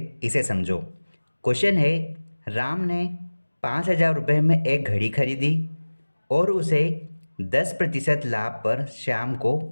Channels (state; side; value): inverted; both; correlation -1.00